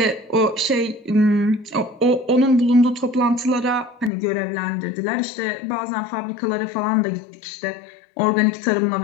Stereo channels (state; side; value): drops out; right; at 4.1 s